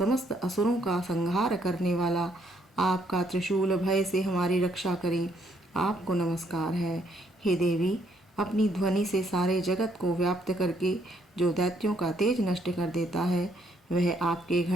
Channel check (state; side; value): normal; both; correlation 0.70